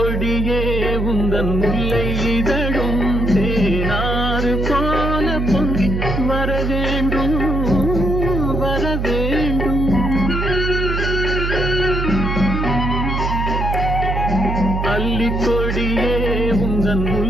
உந்தன் முல்லை இதழும் தேனாறு போல பொங்கி வர வேண்டும் வர வேண்டும். அல்லிக்கொடியே உந்தன்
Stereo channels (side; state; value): right; noise; hum, 1 dB below the sound